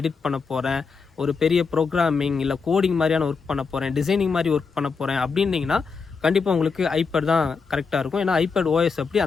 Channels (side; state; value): right; quieter; 5.1 dB